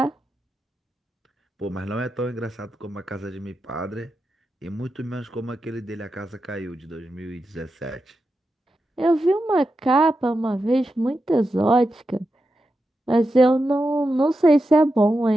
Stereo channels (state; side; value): normal; both; correlation 0.89